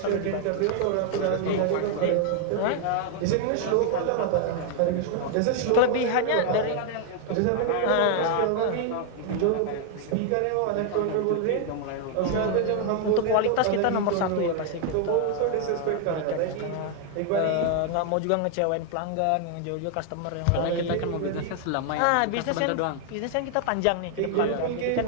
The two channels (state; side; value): different; both; correlation 0.00